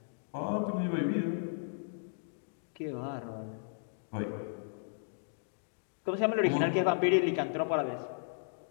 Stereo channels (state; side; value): silent; right; digital silence